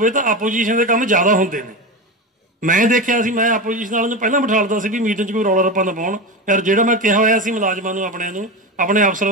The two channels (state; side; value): normal; both; correlation 0.21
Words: ਤਾਂ ਆਪੋਜੀਸ਼ਨ ਦੇ ਕੰਮ ਜ਼ਿਆਦਾ ਹੁੰਦੇ ਨੇ। ਮੈਂ ਦੇਖਿਆ ਸੀ, ਮੈਂ ਆਪੋਜੀਸ਼ਨ ਵਾਲਿਆਂ ਨੂੰ ਪਹਿਲਾਂ ਬਿਠਾ ਲਦਾ ਸੀ ਵੀ ਮੀਟਿੰਗ 'ਚ ਕੋਈ ਰੌਲਾ ਰੱਪਾ ਨਾ ਪਾਉਣ। ਯਾਰ ਜਿਹੜਾ ਮੈਂ ਕਿਹਾ ਹੋਇਆ ਸੀ ਮੁਲਾਜ਼ਮਾਂ ਨੂੰ, ਆਪਣੇ